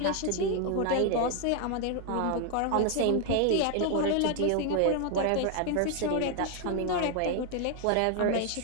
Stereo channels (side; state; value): both; different; correlation 0.00